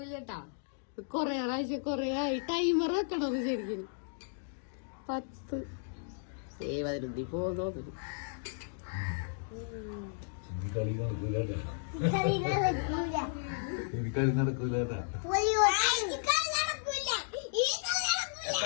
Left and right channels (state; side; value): silent; right; digital silence